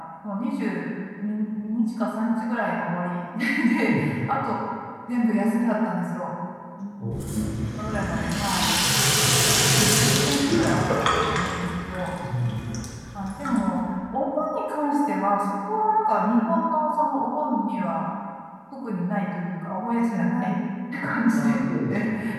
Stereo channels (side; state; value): both; identical; correlation 1.00